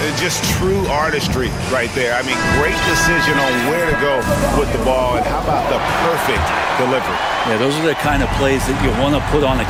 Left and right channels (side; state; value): both; identical; correlation 1.00